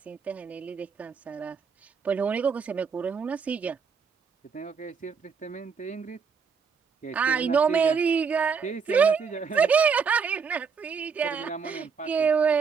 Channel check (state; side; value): quieter; left; 5.8 dB